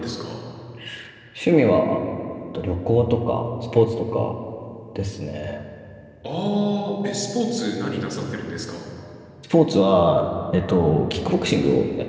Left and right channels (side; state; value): both; identical; correlation 1.00